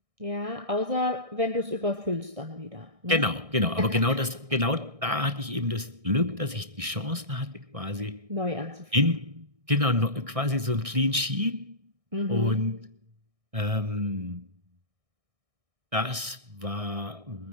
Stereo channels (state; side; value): late; left; 1.6 ms